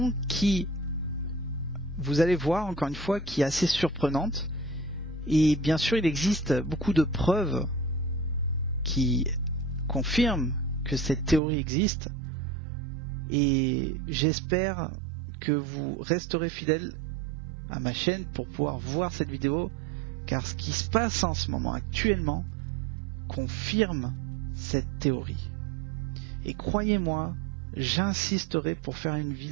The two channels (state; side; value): drops out; left; at 11.4 s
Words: qui, vous allez voir encore une fois, qui est assez surprenante. Et bien sûr, il existe beaucoup de preuves qui confirment que cette théorie existe. Et j'espère que vous resterez fidèles à ma chaîne pour pouvoir voir cette vidéo, car ce qui se passe en ce moment actuellement confirme cette théorie. Et croyez-moi, j'insisterai pour faire une